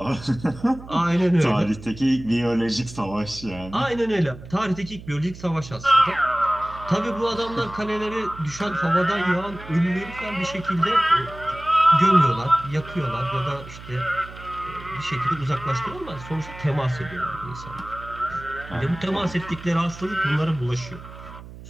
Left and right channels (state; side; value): noise; right; hum, 15 dB below the sound